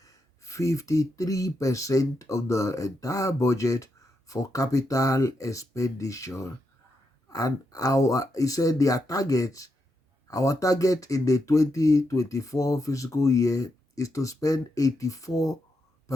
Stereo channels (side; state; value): both; normal; correlation 0.83